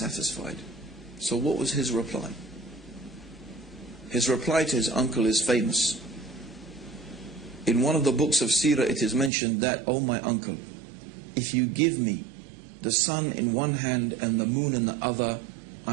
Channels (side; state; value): left; drops out; at 9.3 s